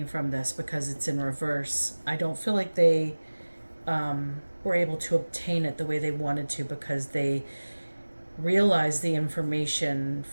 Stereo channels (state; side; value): inverted; both; correlation -1.00